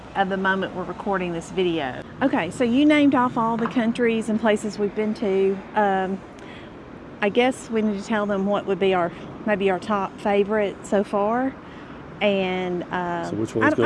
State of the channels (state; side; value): identical; both; correlation 1.00